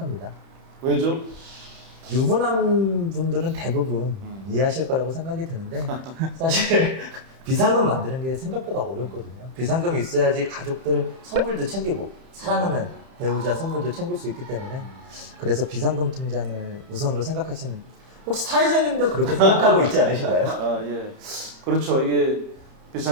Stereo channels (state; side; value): late; left; 31 ms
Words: 왜죠? 유부남 분들은 대부분 이해하실 거라고 생각이 드는데 사실 비상금 만드는 게 생각보다 어렵거든요. 비상금이 있어야지 가족들 선물도 챙기고 사랑하는 배우자 선물도 챙길 수 있기 때문에 그래서 비상금 통장을 우선으로 생각하시는, 혹시 사회자님도 그렇게 생각하고 있지 않으신가요? 아, 예. 그렇죠. 이게